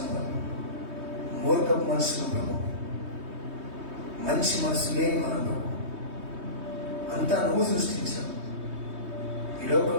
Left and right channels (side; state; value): left; late; 3.2 ms